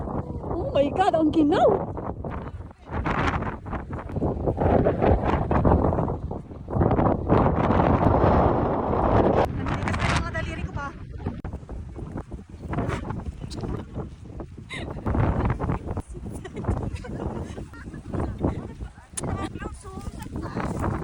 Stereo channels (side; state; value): both; identical; correlation 1.00